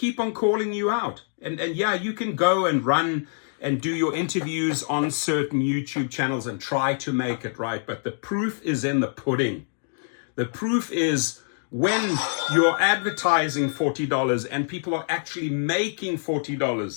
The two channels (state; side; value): silent; right; digital silence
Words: on calling you out. And yeah, you can go and run and do your interviews on certain YouTube channels and try to make it right. But the proof is in the pudding. The proof is when you're advertising $40 and people are actually making